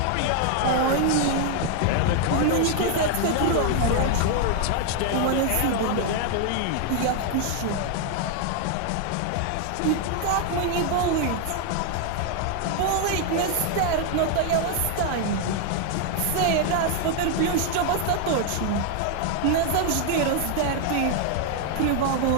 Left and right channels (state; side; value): different; both; correlation 0.00